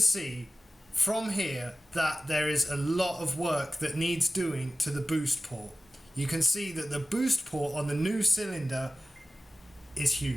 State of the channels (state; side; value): normal; both; correlation 0.96